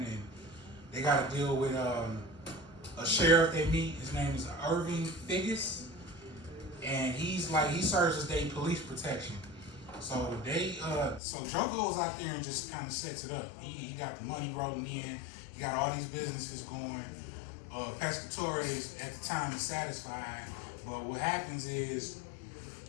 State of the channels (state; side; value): drops out; right; at 11.2 s